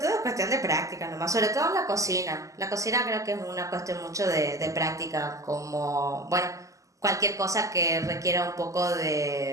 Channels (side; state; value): left; late; 0.16 ms